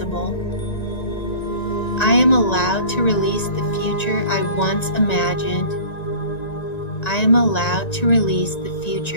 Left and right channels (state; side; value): late; right; 1.9 ms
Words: I am allowed to release the future I once imagined. I am allowed to release the